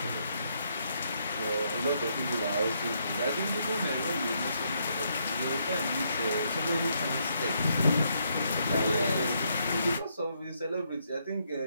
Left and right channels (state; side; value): inverted; both; correlation -0.75